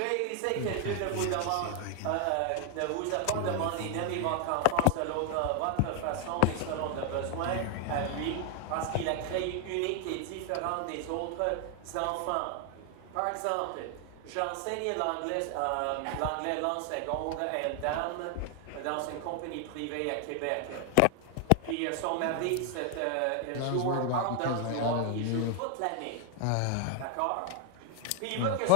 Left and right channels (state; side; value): different; both; correlation 0.00